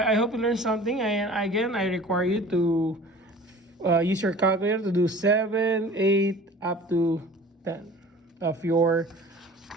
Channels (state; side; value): normal; both; correlation 0.43